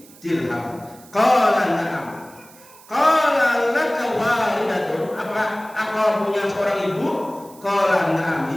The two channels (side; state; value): right; noise; hiss, 23 dB below the sound